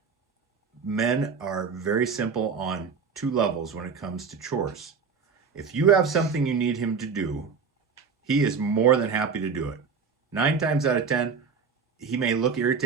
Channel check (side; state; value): left; quieter; 5.7 dB